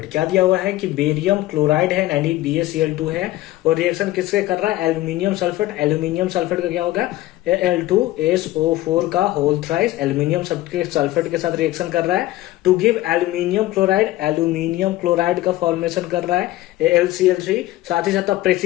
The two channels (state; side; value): quieter; right; 16.3 dB